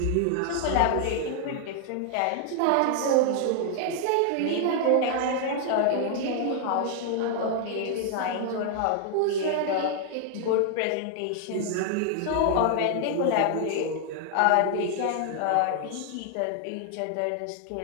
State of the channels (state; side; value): different; both; correlation 0.00